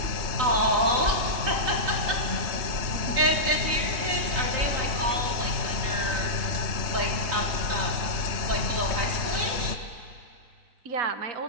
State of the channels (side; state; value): left; late; 3.9 ms